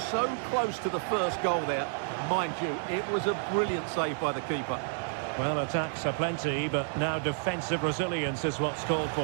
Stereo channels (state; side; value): silent; left; digital silence